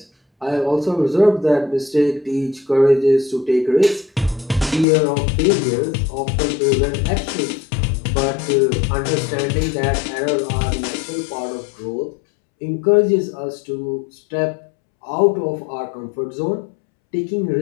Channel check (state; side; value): drops out; right; at 4.9 s